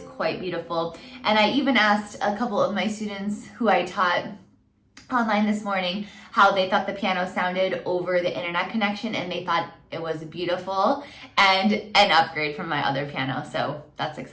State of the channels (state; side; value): identical; both; correlation 1.00